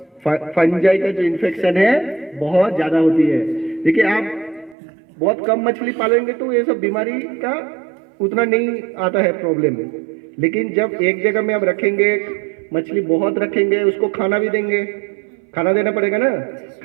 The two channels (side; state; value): left; drops out; at 4.8 s